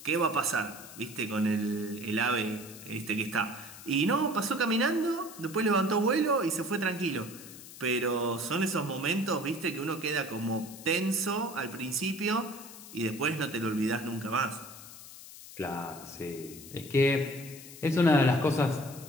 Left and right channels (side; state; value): left; noise; hiss, 16 dB below the sound